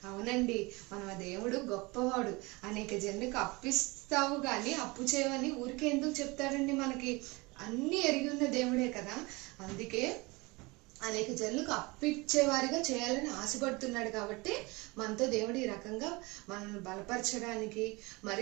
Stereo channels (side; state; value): left; quieter; 24.6 dB